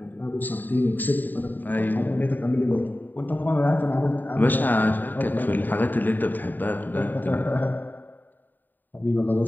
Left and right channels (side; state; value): right; late; 0.089 ms